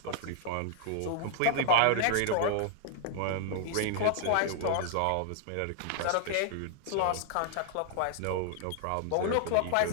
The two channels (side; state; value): both; different; correlation -0.01